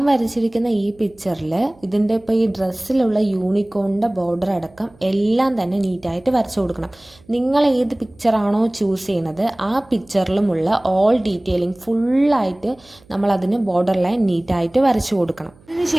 വരച്ചിരിക്കുന്ന ഈ പിക്ചറിൽ ഇതിൻ്റെ ഇപ്പോൾ ഈ ഡ്രസ്സിലുള്ള യൂണിക്കോണിൻ്റെ ബോർഡർ അടക്കം എല്ലാം തന്നെ നീറ്റായിട്ട് വരച്ചു കൊടുക്കണം. നിങ്ങൾ ഏത് പിക്ചറാണോ ചൂസ് ചെയ്യുന്നത് ആ പിക്ചറിലുമുള്ള ഓൾ ഡീറ്റെയിലിംഗ് ഫുള്ളായിട്ട് നമ്മൾ അതിന് ബോർഡർ ലൈൻ നീറ്റായിട്ട് വരച്ചു കൊടുക്കണം.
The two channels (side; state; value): right; noise; hum, 28 dB below the sound